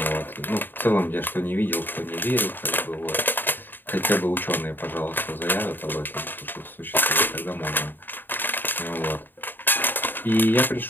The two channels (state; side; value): late; right; 0.093 ms